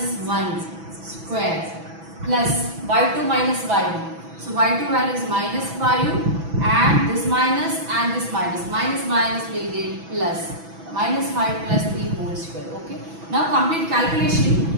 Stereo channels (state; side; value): late; left; 6.1 ms